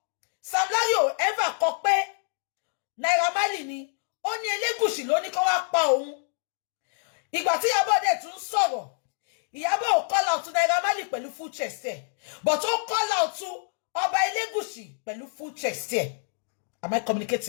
Sam Larry ò ever kọ pé Naira Marley ni ó ní Elégùṣì ló ní kó wá pa òun. Ìgbà tí Ìyábọ̀ dẹ̀ tún sọ̀rọ̀ Ìyábọ̀ ò call out to Naira Marley pẹ̀lú full chest ẹ̀ but ó call out to Ọba Elégùṣì pẹ̀lú full chest ẹ̀. Am I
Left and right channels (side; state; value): right; silent; digital silence